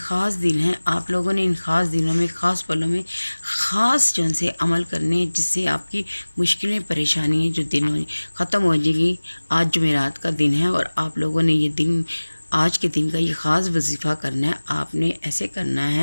दिन है। आप लोगों ने इन ख़ास दिनों में, ख़ास पलों में ख़ास जो से अमल करने हैं, जिससे आपकी मुश्किलें परेशानियाँ जो दिन हो ख़त्म हो जाएगी। आज जुमेरात का दिन है और आप लोगों ने ये दिन, आज के दिन का ये ख़ास वजीफ़ा करना है। आपने ऐसे करना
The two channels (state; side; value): inverted; both; correlation -1.00